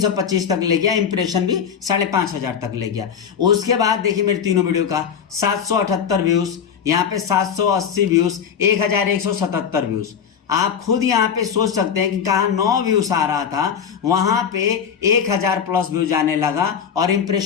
तक ले गया, इंप्रेशन भी 5,500 तक ले गया। उसके बाद देखिए मेरे तीनों वीडियो का 778 व्यूज, यहाँ पे 780 व्यूज, 1,177 व्यूज। आप खुद यहाँ पे सोच सकते हैं कि कहाँ 9 व्यूज आ रहा था, वहां पे 1,000 प्लस व्यूज आने लगा और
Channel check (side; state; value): right; quieter; 7.5 dB